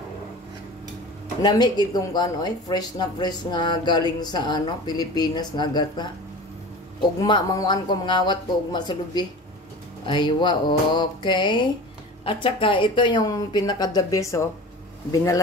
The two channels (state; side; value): normal; both; correlation 0.36